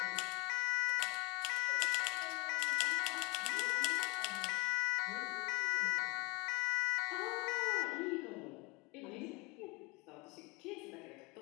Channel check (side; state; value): right; quieter; 27.9 dB